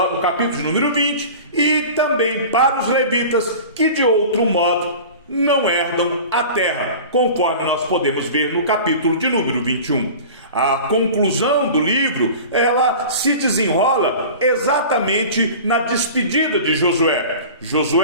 capítulo de número 20, e também para os levitas que de outro modo não herdam a terra, conforme nós podemos ver no capítulo de número 21. A conclusão do livro, ela se desenrola exatamente na despedida de Josué.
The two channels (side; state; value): both; inverted; correlation -0.37